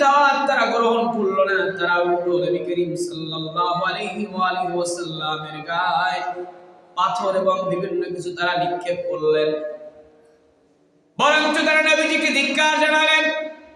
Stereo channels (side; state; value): both; identical; correlation 1.00